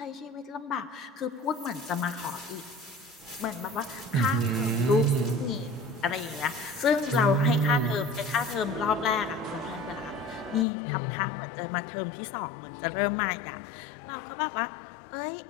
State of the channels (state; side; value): drops out; right; at 10.7 s